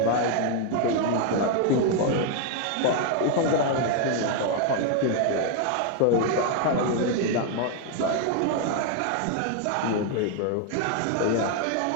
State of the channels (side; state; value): both; different; correlation 0.00